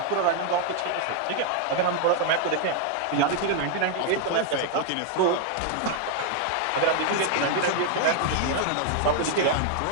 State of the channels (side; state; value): both; different; correlation 0.00